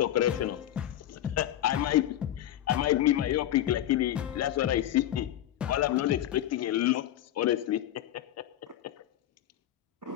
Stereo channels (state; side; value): quieter; right; 12.4 dB